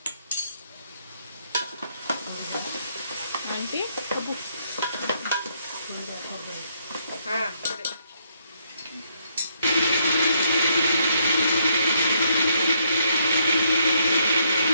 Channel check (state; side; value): inverted; both; correlation -0.72